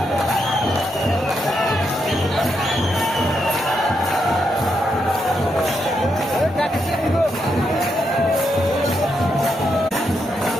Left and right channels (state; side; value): normal; both; correlation 0.81